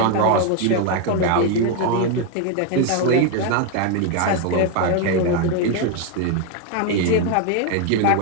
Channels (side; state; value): both; different; correlation 0.01